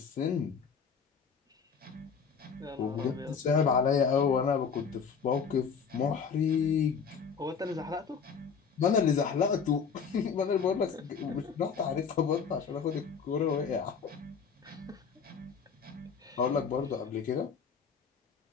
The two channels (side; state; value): right; quieter; 6.1 dB